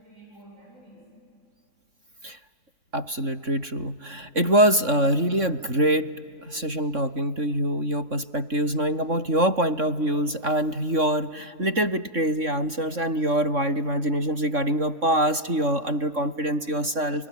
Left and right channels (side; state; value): left; late; 3.6 ms